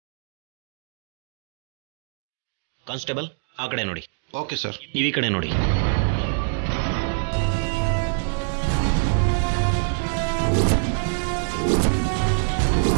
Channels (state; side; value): silent; left; digital silence